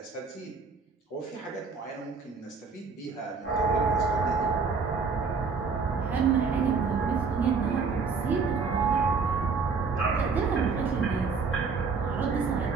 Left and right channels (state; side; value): quieter; left; 5.0 dB